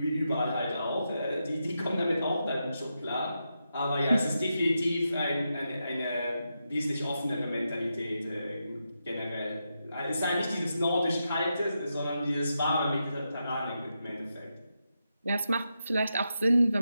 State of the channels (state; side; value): inverted; both; correlation -0.86